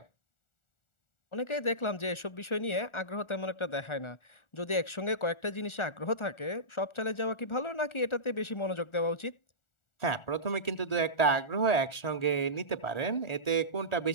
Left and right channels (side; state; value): right; late; 1.4 ms